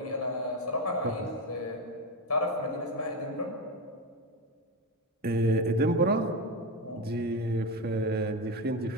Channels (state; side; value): normal; both; correlation 0.15